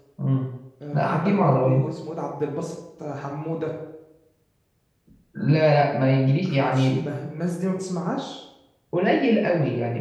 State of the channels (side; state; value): both; identical; correlation 1.00